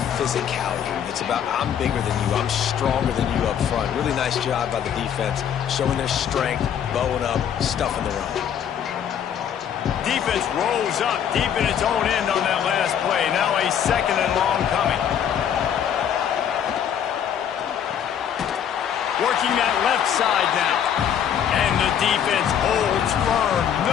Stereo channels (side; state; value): right; quieter; 8.9 dB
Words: physicality. It's about I'm bigger than you, I'm stronger than you up front. Really nice job by the defense, showing their strength, bowing up, stuffing the run. Defense rolls up deep in its own end on that last play. Now a 2nd and long coming. Working that left side now. And the defense holds firm.